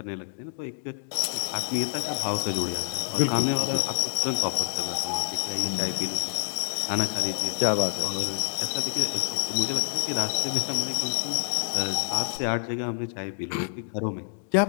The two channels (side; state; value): right; silent; 60 dB below the other